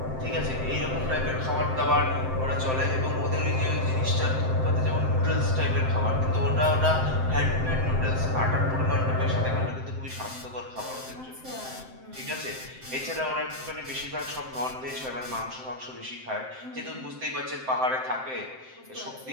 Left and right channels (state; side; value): late; left; 7.7 ms